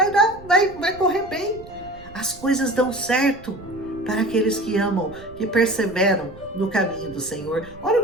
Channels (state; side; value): noise; right; rumble, 19 dB below the sound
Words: correr bem. As coisas dão certo para aqueles que amam, que perseveram no caminho do Senhor. Olha o